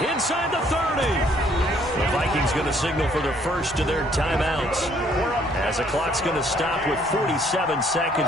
inside the 30. The Vikings going to signal for the first of their timeouts, as the clock's going to stop with 47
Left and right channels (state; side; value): normal; both; correlation 0.64